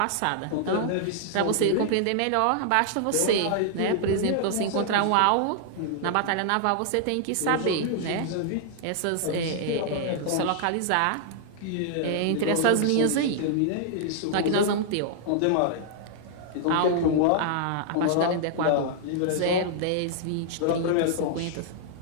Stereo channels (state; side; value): different; both; correlation -0.01